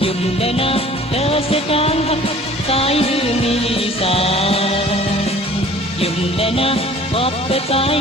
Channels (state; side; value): normal; both; correlation 0.49